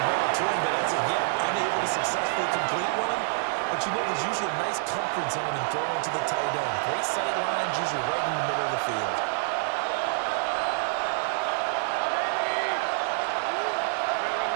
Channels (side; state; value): left; silent; digital silence